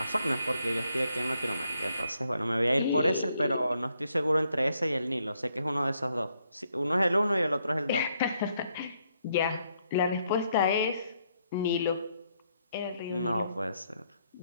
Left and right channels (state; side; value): inverted; both; correlation -0.75